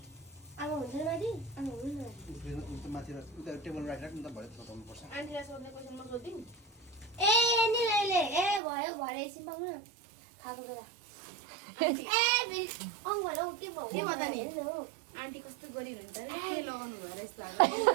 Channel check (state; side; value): drops out; left; at 8.6 s